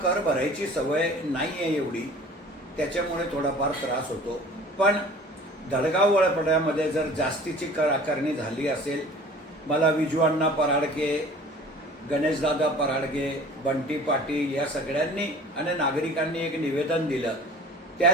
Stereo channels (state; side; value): normal; both; correlation 0.45